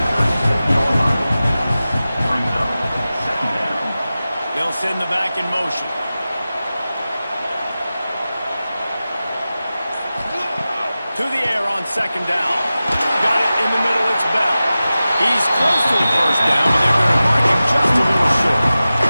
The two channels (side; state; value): both; inverted; correlation -0.95